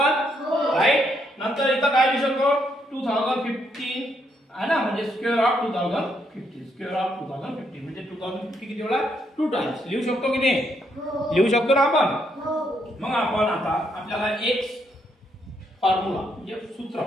राईट। नंतर इथं काय लिहू शकतो, 2015 आहे ना, म्हणजे स्क्वेअर ऑफ 2015, स्क्वेअर ऑफ 2015 म्हणजे 2015 किती वेळा, 2 टाइम्स लिहू शकतो की नाही, लिहू शकतो ना आपण। मग आपण आता आपल्याला एक फॉर्म्युला म्हणजे सूत्र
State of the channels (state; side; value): normal; both; correlation 0.75